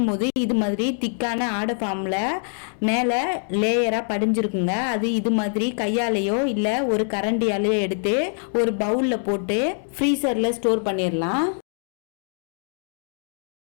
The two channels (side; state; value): right; silent; 63 dB below the other